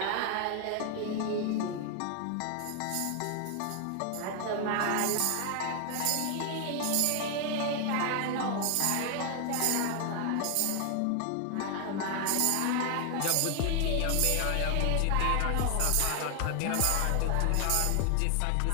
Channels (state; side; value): different; both; correlation 0.00